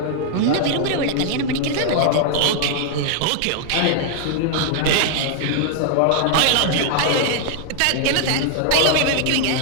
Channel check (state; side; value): different; both; correlation 0.00